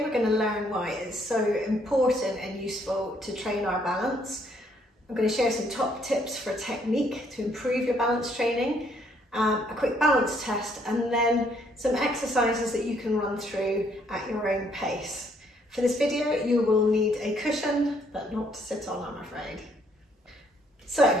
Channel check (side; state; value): both; normal; correlation 0.68